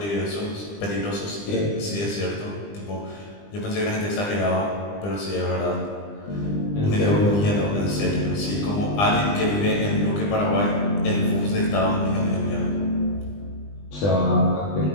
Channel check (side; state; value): right; late; 20 ms